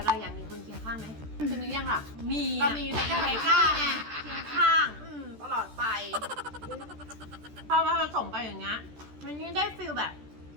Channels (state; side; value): late; left; 14 ms